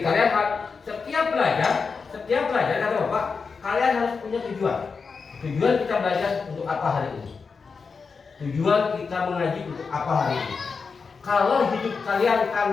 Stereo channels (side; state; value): right; quieter; 5.1 dB